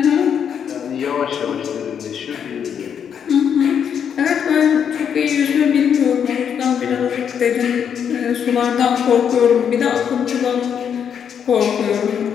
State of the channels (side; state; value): right; quieter; 7.9 dB